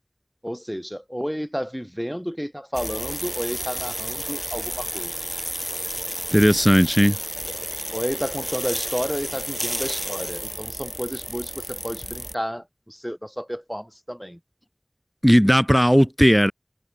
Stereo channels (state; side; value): identical; both; correlation 1.00